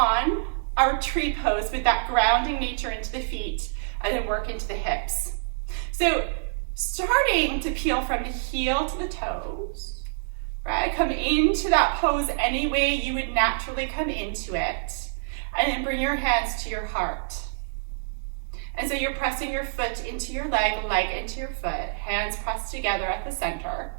our tree pose with that grounding nature into the feet and then work into the hips. So starting to peel from the heel to the toes, right? Come into that pose any way you would naturally come into it, and then bring your hands to your heart. And so you're pressing your foot into your leg into your foot, hands pressed together at the center.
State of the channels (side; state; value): left; silent; digital silence